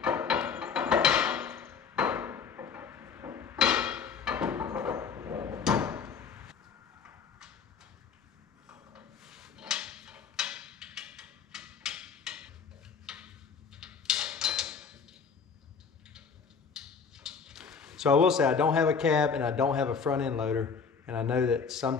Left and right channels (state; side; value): quieter; right; 6.0 dB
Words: So I will say I don't have a cab and I don't have a front end loader, and I know that